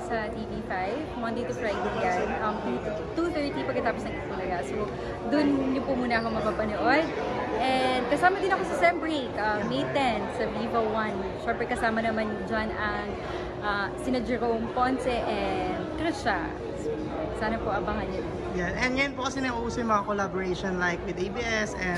sa TV5, Monday to Friday yan. 2:30 pagkatapos ng Itbulaga. So, dun niyo po muna ako mapapanood. And kasama din ako sa Sem Break, May 10 sa Viva 1. Siyempre kasama naman dyan ang sina Jerome Ponce and Trisha. Sana po abangan niyo. Yeah, and ngayon po kasi nauuso yung mga collaboration like with ABS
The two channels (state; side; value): identical; both; correlation 1.00